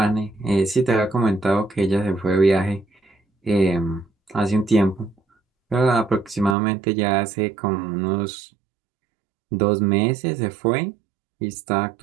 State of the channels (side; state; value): left; drops out; at 6.6 s